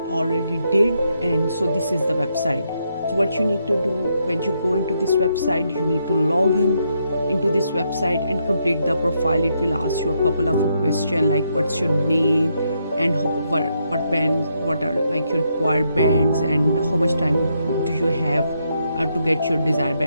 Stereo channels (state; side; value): inverted; both; correlation -0.78